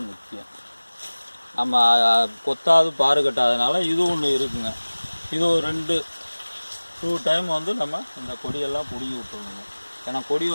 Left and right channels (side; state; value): both; inverted; correlation -1.00